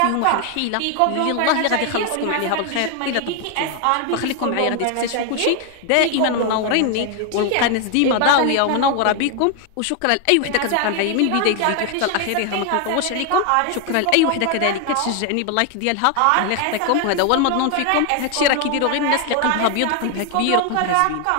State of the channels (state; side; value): different; both; correlation 0.01